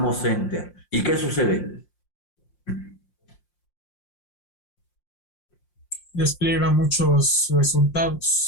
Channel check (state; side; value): late; right; 5.6 ms